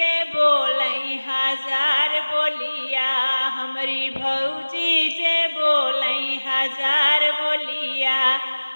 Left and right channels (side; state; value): both; inverted; correlation -1.00